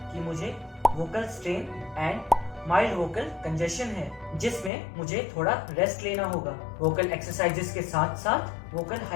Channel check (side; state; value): right; drops out; at 4.7 s